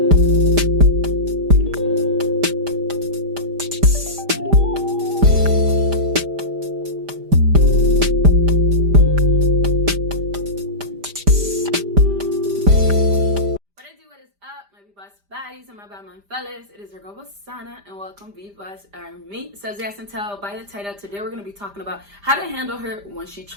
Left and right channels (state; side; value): late; left; 5.0 ms